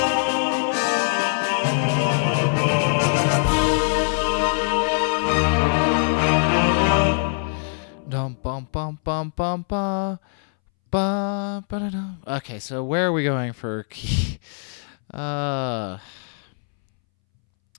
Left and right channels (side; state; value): right; silent; 64 dB below the other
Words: Okay, so where are we going for key? So